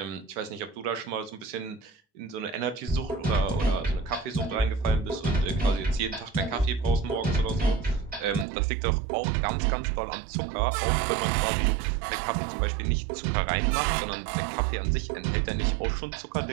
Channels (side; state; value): left; drops out; at 8.5 s